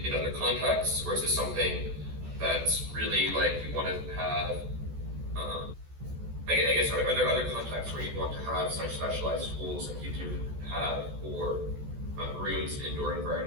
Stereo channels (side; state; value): left; late; 14 ms